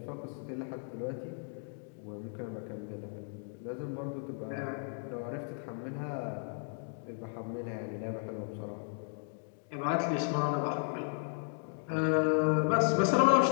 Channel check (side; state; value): right; silent; 55 dB below the other